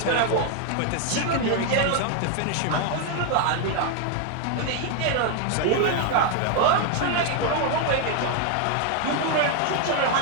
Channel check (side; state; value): both; different; correlation 0.00